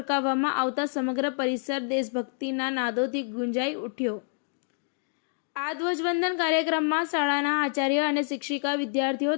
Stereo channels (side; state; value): right; silent; digital silence